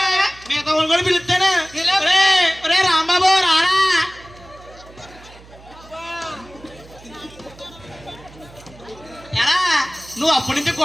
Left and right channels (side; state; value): right; noise; hum, 22 dB below the sound